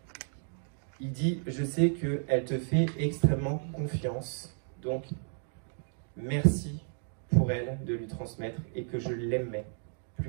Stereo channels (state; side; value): silent; left; 56 dB below the other